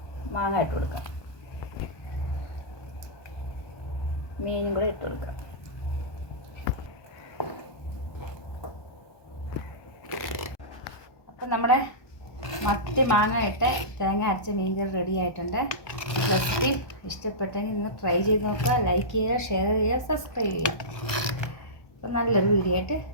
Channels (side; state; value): right; late; 1.2 ms